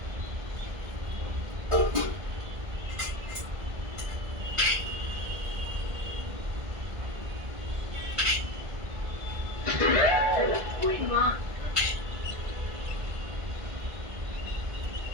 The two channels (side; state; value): left; late; 1.7 ms